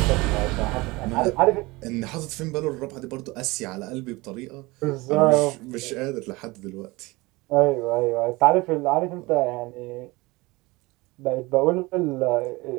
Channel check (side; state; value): left; quieter; 22.6 dB